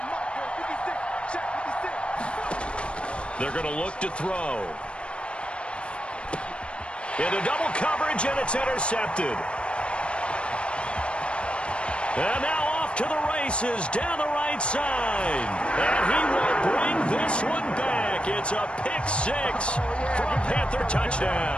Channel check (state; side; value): late; right; 0.058 ms